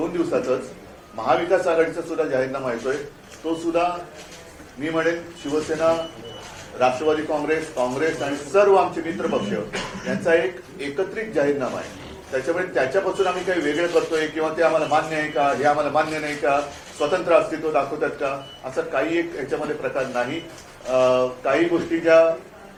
दिवसातच महाविकास आघाडीचा सुद्धा जाहीरनामा येतोय. तो सुद्धा मी म्हणेन शिवसेना, राष्ट्रवादी काँग्रेस आणि सर्व आमचे मित्र पक्ष यांचा एक एकत्रित जाहीरनामा आहे. त्याच्यामुळे त्याच्यापासून आम्ही काही वेगळं करतोय किंवा ते आम्हाला मान्य आहे का, हे आम्हाला मान्य नाही का, स्वतंत्र अस्तित्व दाखवतात का, असं काही एक याच्यामध्ये प्रकार नाही. काही गोष्टी ज्या,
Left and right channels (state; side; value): identical; both; correlation 1.00